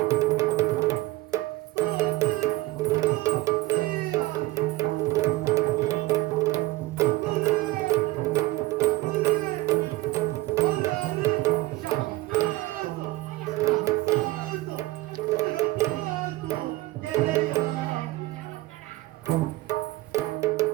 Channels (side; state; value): left; quieter; 18.8 dB